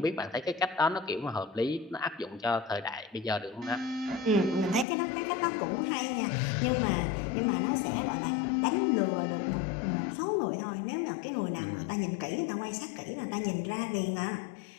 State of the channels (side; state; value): right; drops out; at 4.9 s